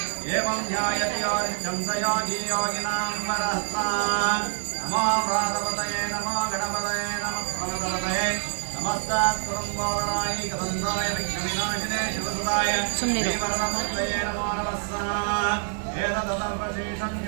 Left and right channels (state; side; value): silent; left; digital silence